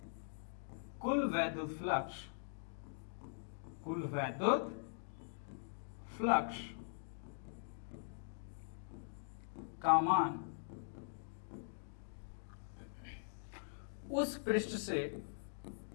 कुल वैद्युत फ्लक्स का मान उस पृष्ठ से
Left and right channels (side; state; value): right; silent; digital silence